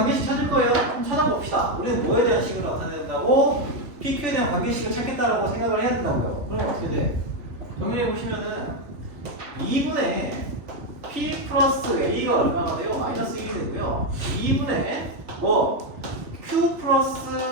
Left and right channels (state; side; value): late; left; 3.4 ms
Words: 찾을 거예요. 한번 찾아봅시다. 우리는 뭐에 대한 식을 나타낸다고? PQ에 대한 관계식을 찾겠다라고 생각을 해야 된다고요. 그럼 어떻게 돼? 정리해 보시면은 2분의 P 플러스 A가 얼마가 돼요? 마이너스 1이 되고요. 2분의 뭐 Q 플러스